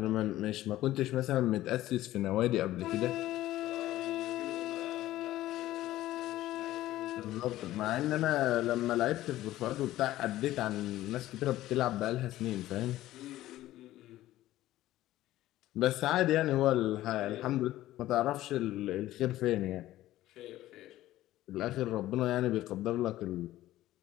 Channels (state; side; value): quieter; right; 15.0 dB